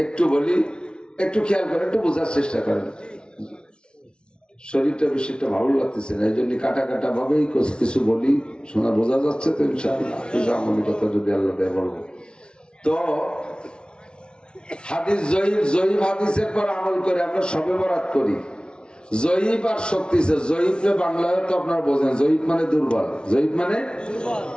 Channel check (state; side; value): late; right; 0.055 ms